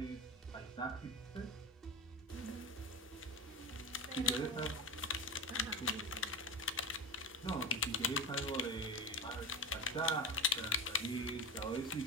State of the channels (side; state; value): both; normal; correlation 0.23